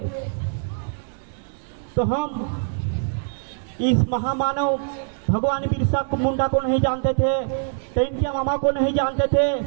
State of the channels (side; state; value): left; silent; digital silence